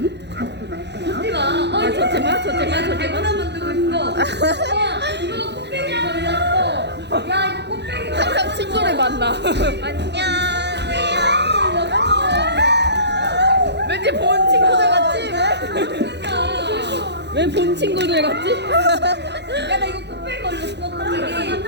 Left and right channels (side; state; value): left; late; 0.50 ms